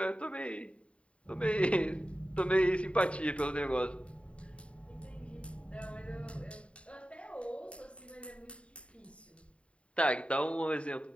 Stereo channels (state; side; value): late; right; 0.061 ms